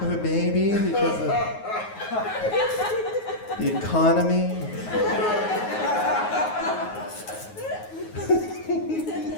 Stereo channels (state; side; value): late; right; 9.4 ms